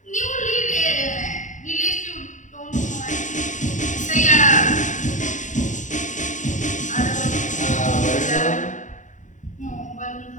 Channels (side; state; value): right; late; 0.36 ms